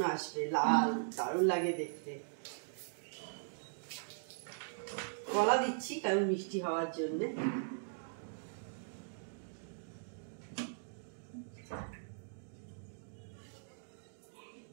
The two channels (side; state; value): left; silent; digital silence